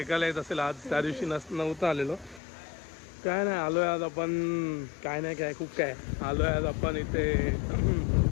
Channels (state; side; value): drops out; right; at 2.4 s